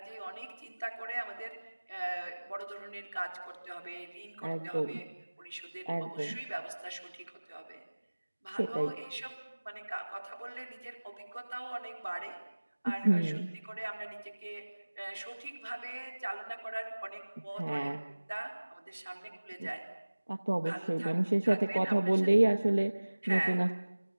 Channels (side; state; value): both; inverted; correlation -1.00